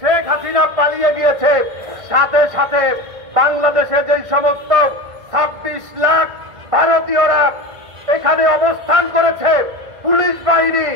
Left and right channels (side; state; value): left; late; 1.5 ms